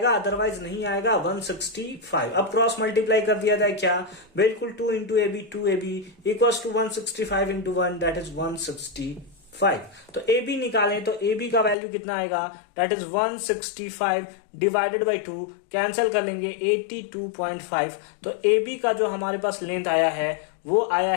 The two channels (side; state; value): right; drops out; at 11.8 s